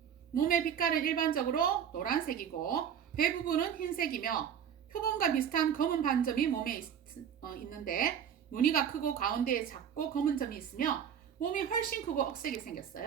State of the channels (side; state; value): left; quieter; 8.5 dB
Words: 몸의 빛깔은 일반적으로 노란색이고 배 부분은 흰색이며 표범과 비슷한 검은 반점이 몸에 있는데 무늬가 크고 가운데에 작고 검은 점이 있으며 몸이 훨씬 크고 억세게